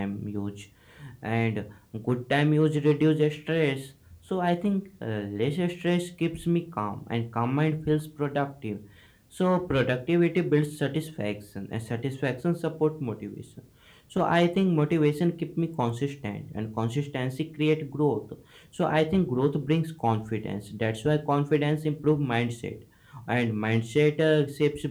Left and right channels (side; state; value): both; identical; correlation 1.00